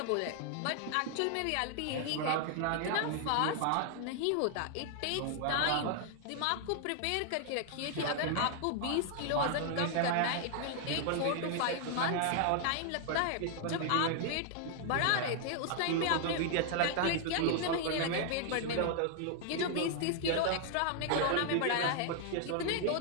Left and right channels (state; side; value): different; both; correlation 0.00